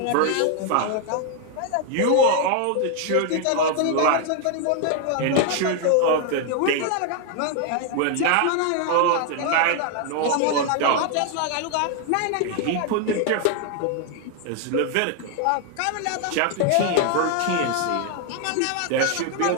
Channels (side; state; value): both; different; correlation 0.00